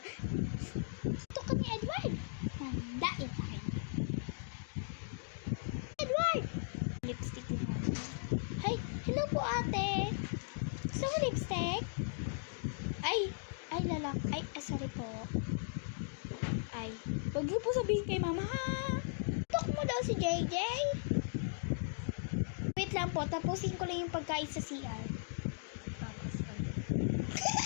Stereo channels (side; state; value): right; silent; digital silence